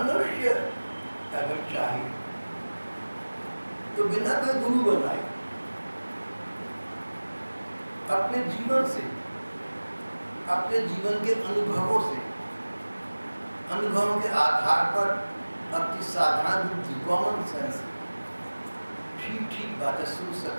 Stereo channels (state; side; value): inverted; both; correlation -1.00